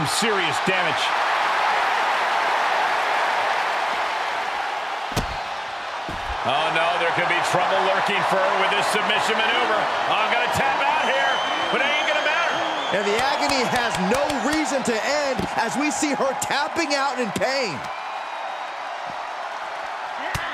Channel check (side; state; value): both; identical; correlation 1.00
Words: serious damage. Oh, no, there could be trouble lurking for her with this submission maneuver. I'm going to tap out here, but it ain't going to matter. And the agony has no reason to end as we see her tapping out in pain.